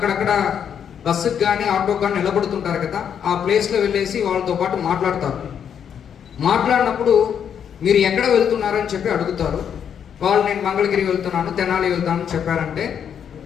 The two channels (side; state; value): right; quieter; 8.2 dB